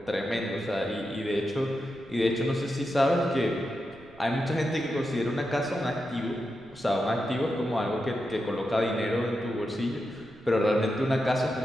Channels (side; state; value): right; noise; rumble, 24 dB below the sound